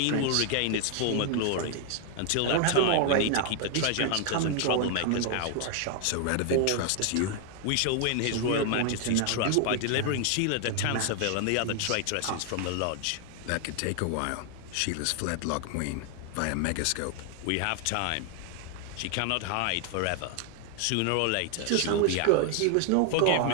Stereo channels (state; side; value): different; both; correlation 0.00